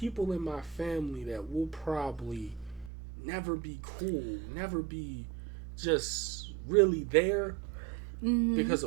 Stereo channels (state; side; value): drops out; left; at 2.9 s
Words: in my family that will probably never be cool, never be just really there because